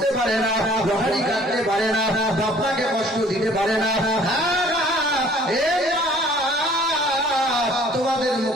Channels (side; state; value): both; normal; correlation 0.55